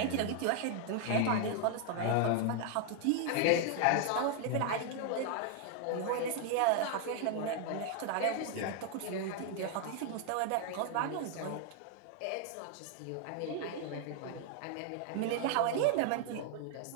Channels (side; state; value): both; different; correlation 0.00